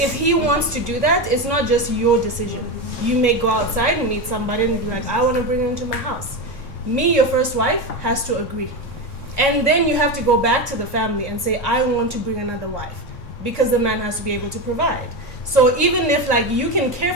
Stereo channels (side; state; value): right; late; 3.6 ms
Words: he wants to do that, it's not just your decision. You may go outside and meet somebody and be like, I want to bring her into my house. Me, your first wife, has to agree. And then you have to go back to the family and say, I want to bring another wife. Because the man has to be able to provide. So even if like you can care